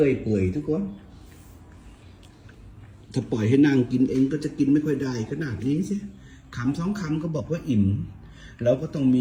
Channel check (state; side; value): identical; both; correlation 1.00